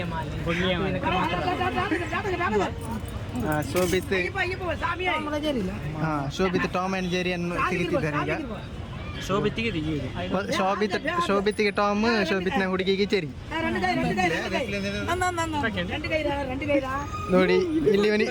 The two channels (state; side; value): identical; both; correlation 1.00